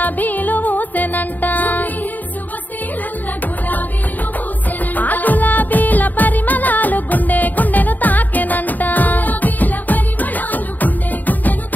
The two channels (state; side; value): late; right; 0.085 ms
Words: ఊసెనంట ఆ గులాబీల పరిమళాలు గుండె గుండెను తాకెనంట